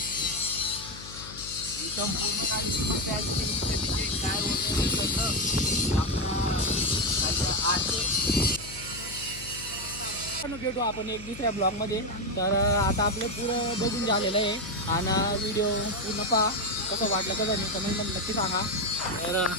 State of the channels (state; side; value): noise; left; hum, 15 dB below the sound